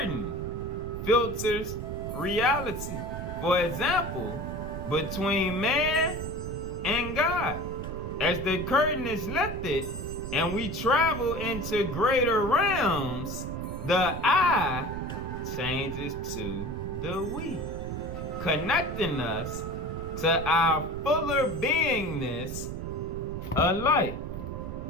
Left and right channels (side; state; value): right; noise; rumble, 7 dB below the sound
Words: filters reality. For example, between man and God. As the curtain is lifted and we travel into greater realms, the I changes to the we, connecting us to our fuller beingness of light.